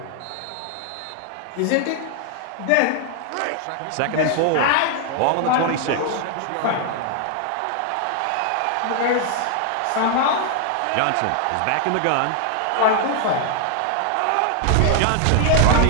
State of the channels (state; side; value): different; both; correlation 0.00